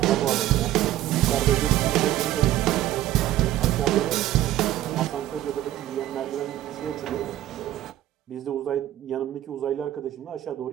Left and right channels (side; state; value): left; quieter; 13.7 dB